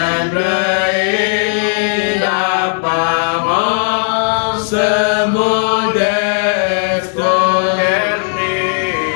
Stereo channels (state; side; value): silent; right; digital silence